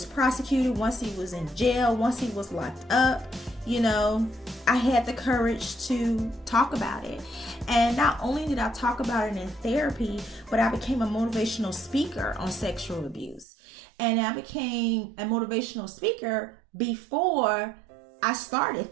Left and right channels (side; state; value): left; drops out; at 13.5 s